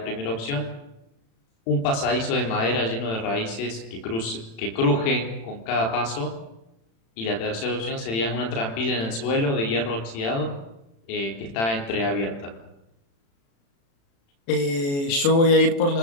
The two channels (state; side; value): late; right; 36 ms